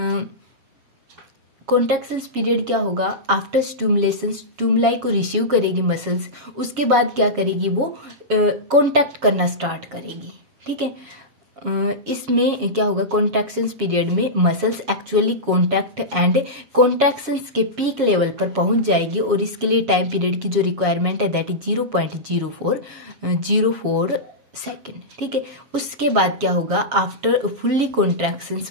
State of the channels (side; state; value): left; late; 7.2 ms